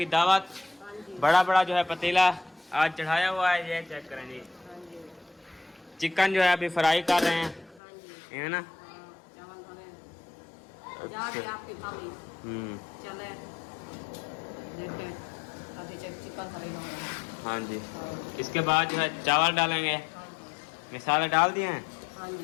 दावत। बड़ा बड़ा जो है पतीला आज चढ़ाया हुआ है, ये चेक करें जी। चिकन जो है अभी फ्राई कर रहे हैं, है ना। जाके आपकी भाभी चले देखे अभी चिकन फ्राई हो रहा है। हाँ जी। इसके बाद जो है चावल डालेंगे। मिसाले डाल दिए हैं। हाँ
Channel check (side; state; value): right; drops out; at 7.8 s